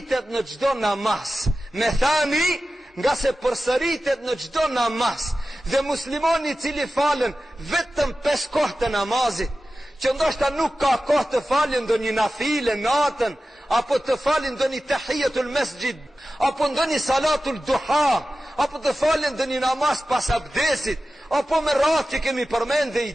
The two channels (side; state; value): both; normal; correlation 0.95